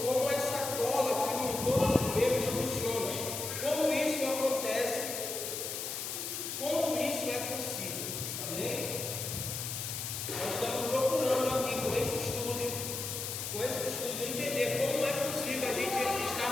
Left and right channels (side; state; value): left; noise; hiss, 4 dB below the sound